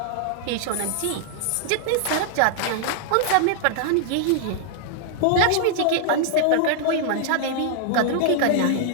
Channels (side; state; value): both; different; correlation -0.01